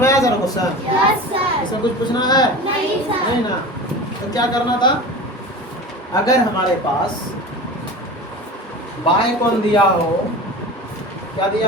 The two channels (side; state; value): both; normal; correlation 0.33